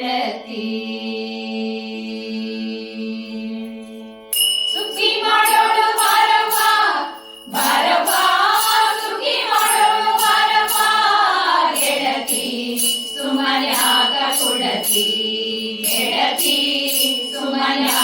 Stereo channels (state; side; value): identical; both; correlation 1.00